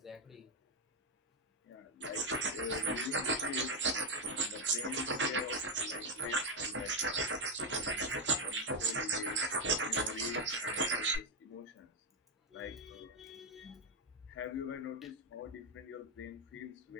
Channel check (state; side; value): normal; both; correlation 0.05